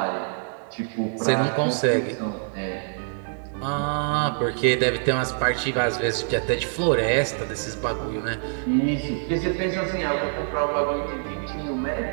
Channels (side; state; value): left; silent; 62 dB below the other